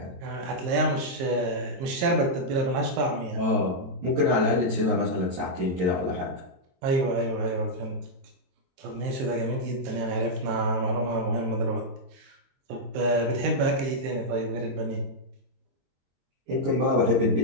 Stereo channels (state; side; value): late; left; 23 ms